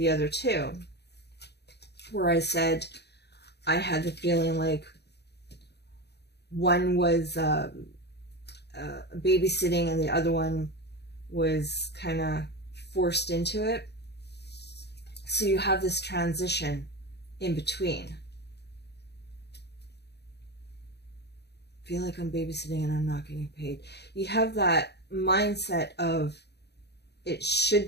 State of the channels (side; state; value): right; late; 0.48 ms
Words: other two, where I said I had the feeling like one was babysitting and the other one was kind of forced into it. So you have this transition in between. I feel like I'm babysitting and I'm not getting paid. You have that mindset of it should